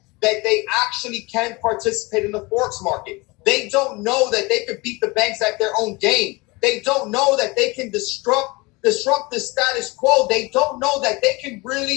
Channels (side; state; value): right; quieter; 24.9 dB